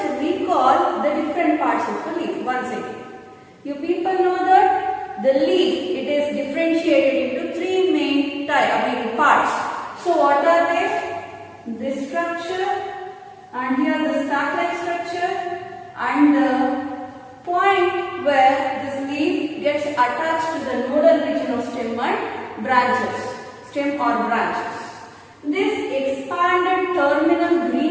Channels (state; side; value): identical; both; correlation 1.00